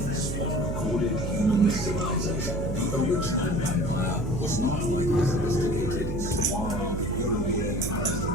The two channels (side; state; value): right; noise; hum, 3 dB below the sound